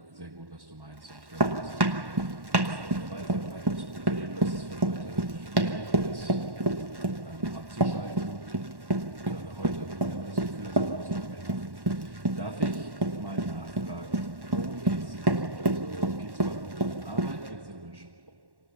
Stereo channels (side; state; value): left; late; 1.1 ms